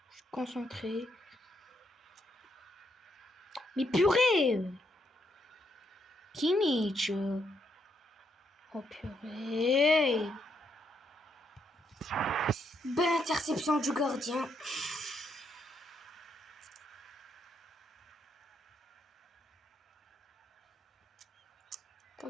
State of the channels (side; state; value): both; normal; correlation 0.76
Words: Je suis concentré. Mais purée! Kimmich! Oh purée! Belle interception du gardien. Pas